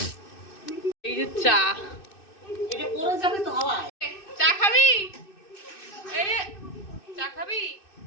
এই যে চা। চা খাবি? এই যে চা খাবি?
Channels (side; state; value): right; late; 2.6 ms